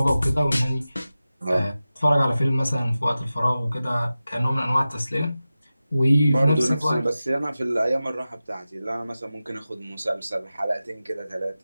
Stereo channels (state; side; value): inverted; both; correlation -0.95